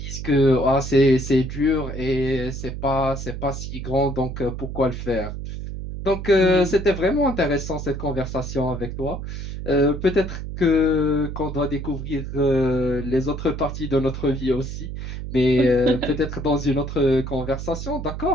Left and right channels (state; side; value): noise; right; hum, 7 dB below the sound